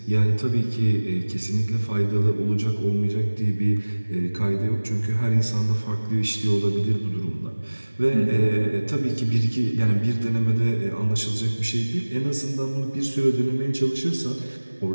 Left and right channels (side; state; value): both; inverted; correlation -1.00